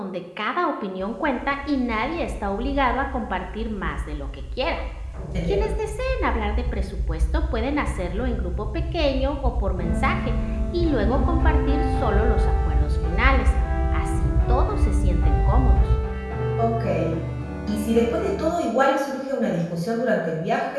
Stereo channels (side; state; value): both; identical; correlation 1.00